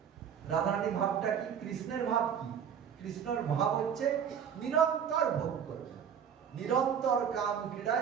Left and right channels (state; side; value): quieter; left; 8.0 dB